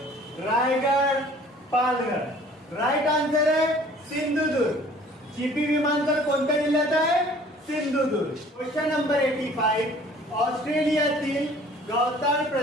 रायगड पालघर। राइट आंसर है सिंधुदुर्ग। चिपी विमानतळ कोणत्या जिल्ह्यात आहे सिंधुदुर्ग। क्वेश्चन नंबर 85 ऑस्ट्रेलियातील गवताळ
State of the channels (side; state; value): both; normal; correlation 0.51